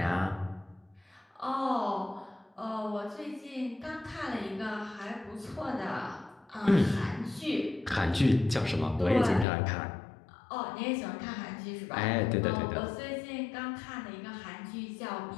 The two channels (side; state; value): right; drops out; at 9.5 s